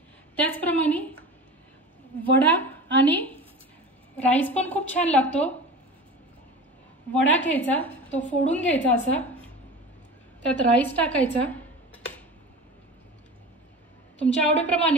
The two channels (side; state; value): both; normal; correlation 0.33